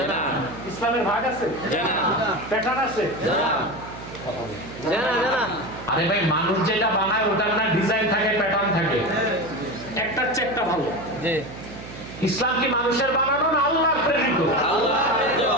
ইসলামের ভাগ আছে, প্যাটার্ন আছে। আরে ভাই, মানুষ যেটা বানায় ওটার না ডিজাইন থাকে, প্যাটার্ন থাকে। একটা হচ্ছে একটা ভালো। ইসলাম কি মানুষের বানানো না আল্লাহর প্রেরিত?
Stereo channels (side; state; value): right; noise; hum, 13 dB below the sound